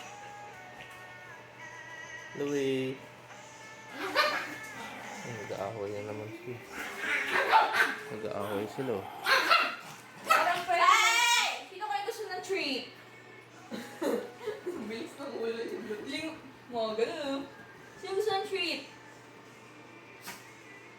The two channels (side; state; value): both; identical; correlation 1.00